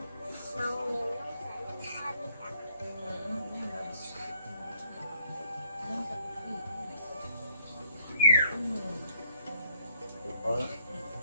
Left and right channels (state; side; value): inverted; both; correlation -0.68